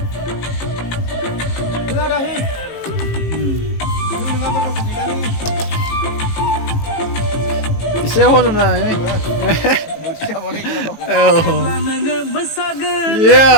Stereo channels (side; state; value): right; late; 18 ms